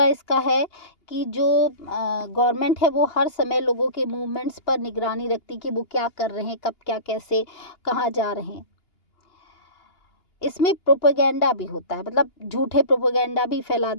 इसका है कि जो गवर्नमेंट है वो हर समय लोगों के मूवमेंट्स पर निगरानी रखती कि वो क्या कर रहे हैं, कब क्या कैसे कहाँ जा रहे हैं। इसमें प्रोपेगेंडा भी होता है, मतलब झूठे प्रोपेगेंडा भी फैला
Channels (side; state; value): right; late; 2.8 ms